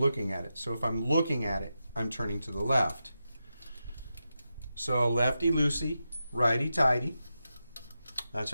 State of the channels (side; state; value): both; inverted; correlation -0.89